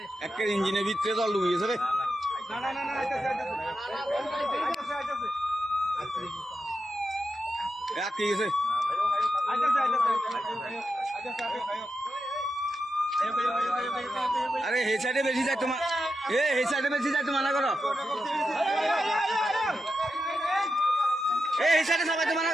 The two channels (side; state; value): both; normal; correlation 0.88